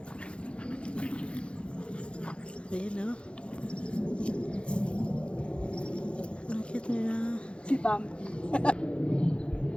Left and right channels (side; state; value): right; late; 0.058 ms